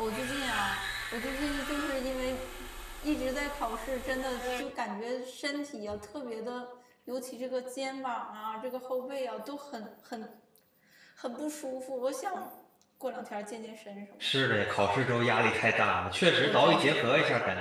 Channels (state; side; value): identical; both; correlation 1.00